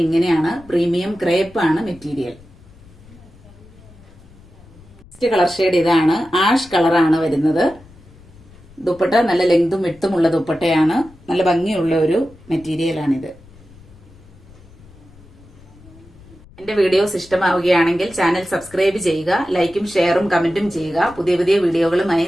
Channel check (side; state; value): left; noise; rumble, 23 dB below the sound